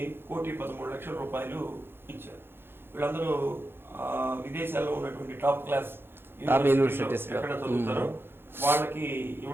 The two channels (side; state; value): left; late; 0.11 ms